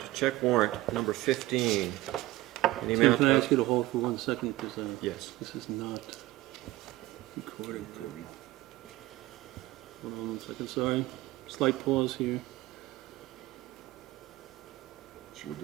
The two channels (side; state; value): left; quieter; 17.9 dB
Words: check warrant number 15. In the Tim, amount can I of, ask you to hold for 1 second, because yes. this is not recorded. Hold on 1 second, sorry. Slight pause here. Should we